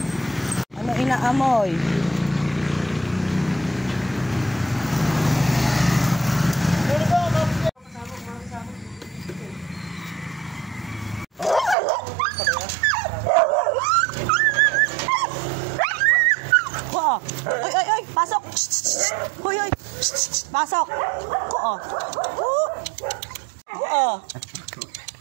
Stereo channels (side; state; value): left; drops out; at 11.8 s